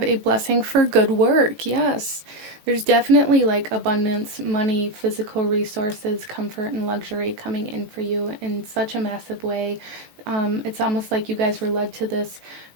a blessing for good work. Yes, there's definitely like abundance, money, physical resources, comfort, and luxury coming in for you in such a massive way. It's almost like you guys were led to this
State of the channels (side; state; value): left; late; 18 ms